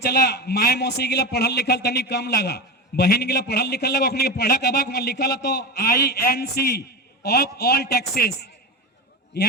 माए मौसी के लिए पढ़ल लिखल तनी कम लगा, बहन के लिए पढ़ल लिखल लगा, अपने पढ़ा कबाक में लिखल तो INC ऑफ ऑल टैक्सेस,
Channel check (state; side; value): normal; both; correlation 0.22